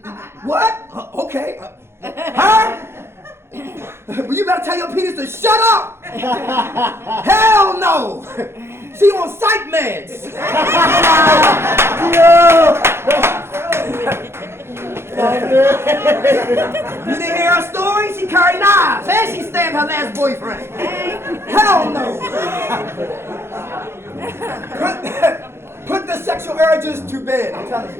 What? Okay. Huh? Well, you better tell your penis to shut up. Hell no. She on psych meds. You didn't hear her story? She carried knives and she stabbed her last boyfriend. Hell no. Put the sexual urges to bed. I'm telling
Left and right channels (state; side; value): late; left; 0.12 ms